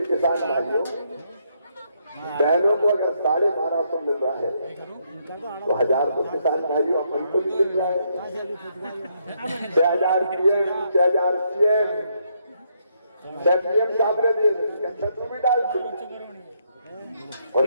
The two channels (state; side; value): inverted; both; correlation -0.75